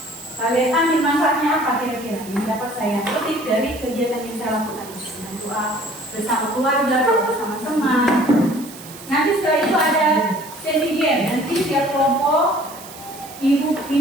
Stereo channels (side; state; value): right; noise; hiss, 17 dB below the sound